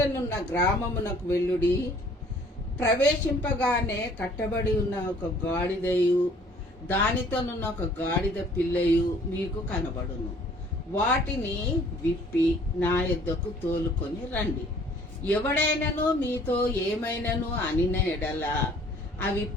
గ్రామమునకు వెళ్ళుడి, ప్రవేశింపగానే కట్టబడి ఉన్న ఒక గాడిదయు దానితోనున్న ఒక గాడిద పిల్లయు మీకు కనబడును. వాటిని విప్పి నా యొద్దకు తోలుకొని రండి. ఎవడైనను మీతో ఏమైనను అనిన ఎడల అవి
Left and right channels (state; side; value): normal; both; correlation 0.55